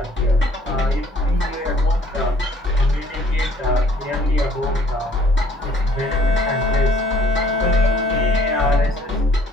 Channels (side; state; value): both; normal; correlation 0.58